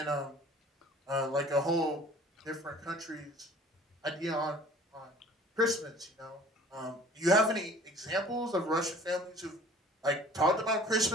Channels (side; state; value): both; normal; correlation 0.49